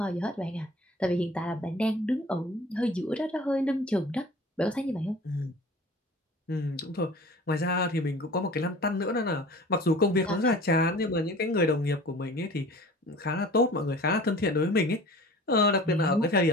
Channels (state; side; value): normal; both; correlation 0.43